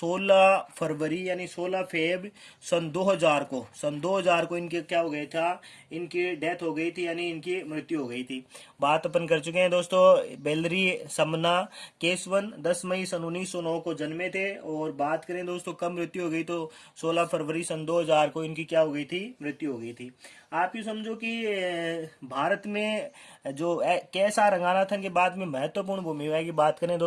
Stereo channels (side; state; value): both; identical; correlation 1.00